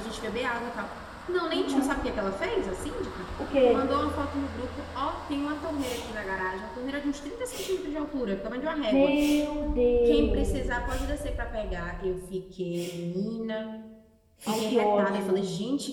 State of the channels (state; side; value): identical; both; correlation 1.00